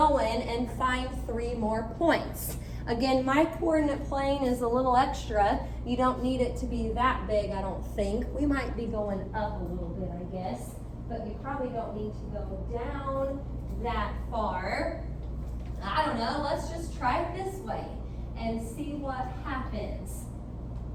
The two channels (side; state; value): both; identical; correlation 1.00